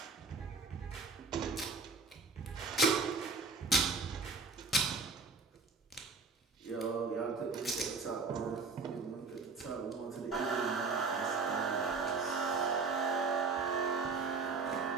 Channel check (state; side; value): quieter; left; 4.3 dB